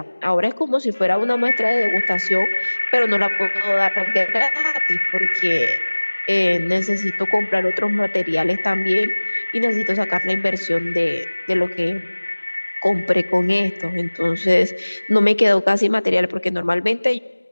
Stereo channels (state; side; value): inverted; both; correlation -1.00